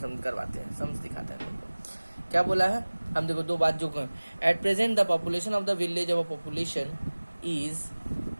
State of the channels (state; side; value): inverted; both; correlation -1.00